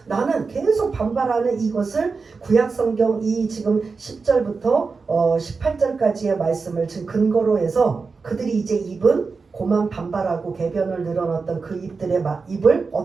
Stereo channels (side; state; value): left; quieter; 4.6 dB